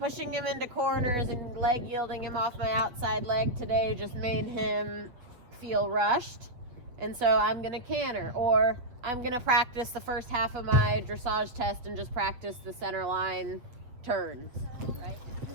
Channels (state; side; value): late; left; 8.0 ms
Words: him into corners and leg yielding him off my outside leg today just made him feel rushed. And so I'm going to canter. Or I'm going to practice the first half of my dressage test and just practice the center line turns, right?